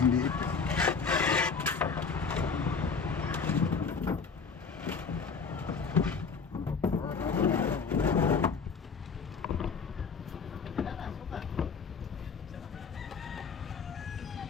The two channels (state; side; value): quieter; right; 5.3 dB